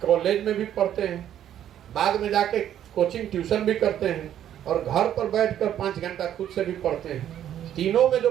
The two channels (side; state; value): left; quieter; 10.7 dB